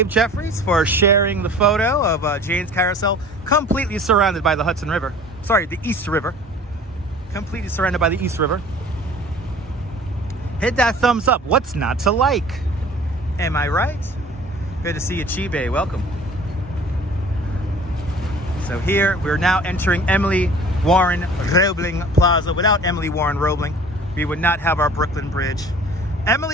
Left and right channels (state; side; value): normal; both; correlation 0.47